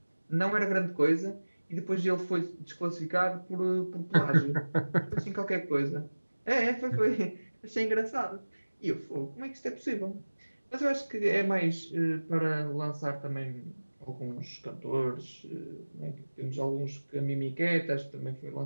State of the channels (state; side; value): inverted; both; correlation -1.00